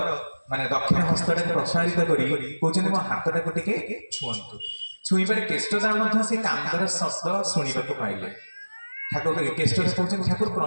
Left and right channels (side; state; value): both; inverted; correlation -1.00